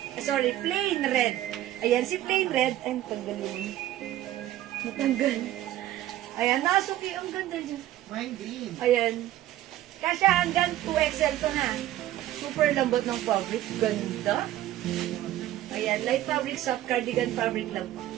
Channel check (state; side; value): quieter; left; 13.8 dB